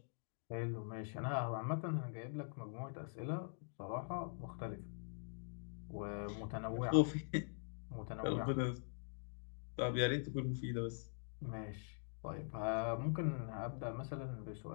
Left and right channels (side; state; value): right; silent; digital silence